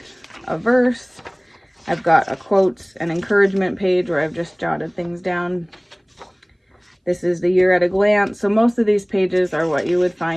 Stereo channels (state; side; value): identical; both; correlation 1.00